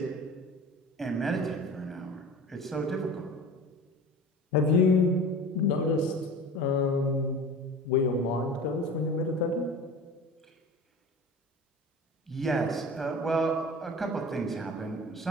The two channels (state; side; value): normal; both; correlation 0.37